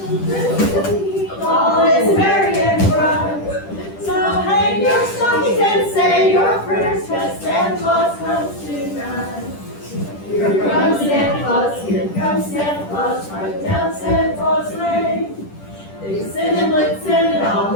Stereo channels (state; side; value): late; right; 10 ms